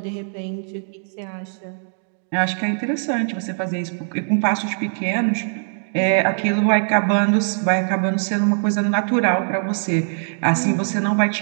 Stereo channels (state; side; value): silent; left; digital silence